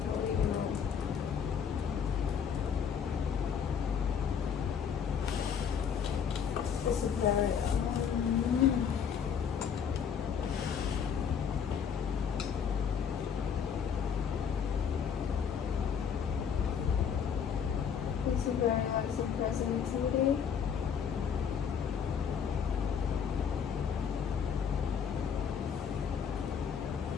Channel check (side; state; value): right; quieter; 7.3 dB